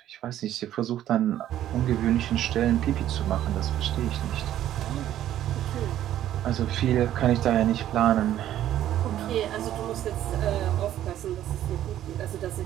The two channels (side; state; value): left; quieter; 12.1 dB